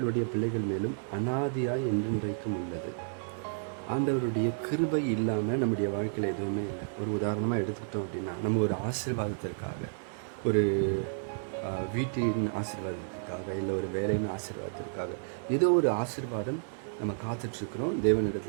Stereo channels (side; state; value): left; silent; 56 dB below the other